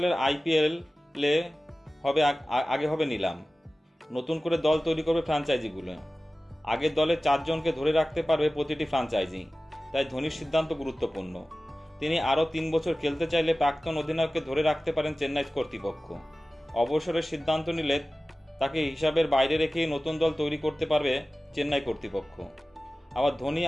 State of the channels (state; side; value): normal; both; correlation 0.96